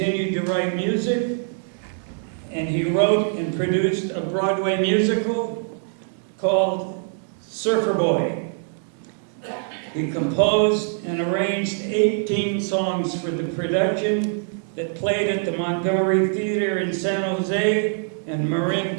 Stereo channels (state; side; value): silent; left; 63 dB below the other